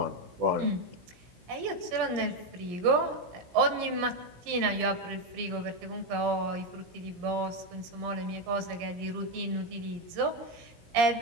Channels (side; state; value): left; late; 17 ms